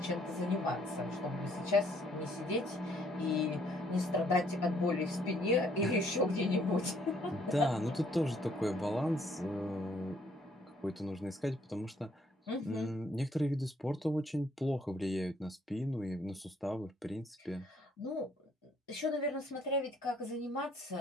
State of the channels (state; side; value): normal; both; correlation 0.66